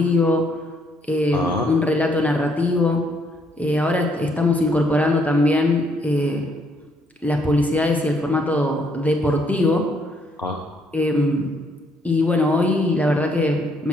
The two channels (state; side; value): normal; both; correlation 0.70